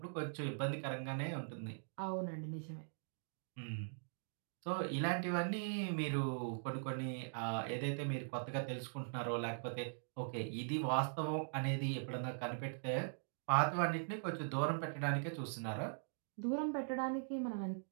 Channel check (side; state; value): left; silent; digital silence